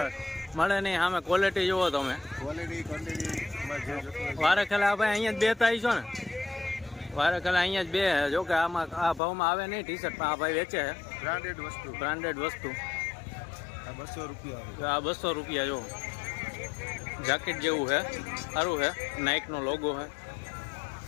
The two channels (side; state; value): right; drops out; at 9.2 s